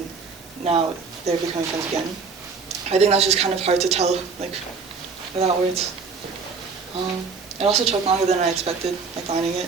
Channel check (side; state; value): left; quieter; 5.0 dB